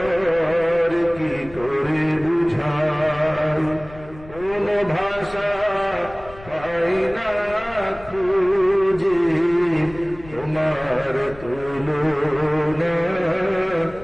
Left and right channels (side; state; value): left; noise; rumble, 19 dB below the sound